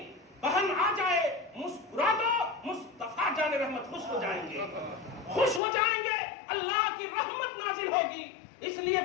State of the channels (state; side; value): drops out; right; at 5.6 s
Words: بہن آ جائے, مسکرا دو, مصطفیٰ جان رحمت خوش ہو جائیں گے, خوش ہو جائیں گے, اللہ کی رحمت نازل ہوگی. اس لیے